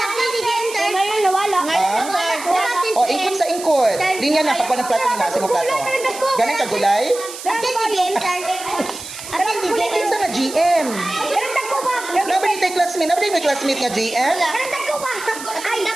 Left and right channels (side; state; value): right; noise; hiss, 12 dB below the sound